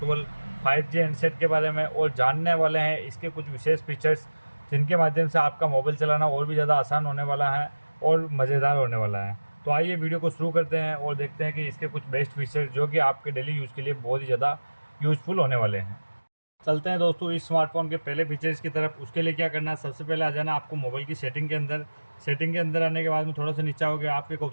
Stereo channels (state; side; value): inverted; both; correlation -1.00